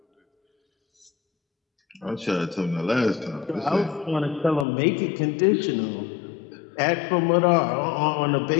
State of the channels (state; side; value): drops out; right; at 4.7 s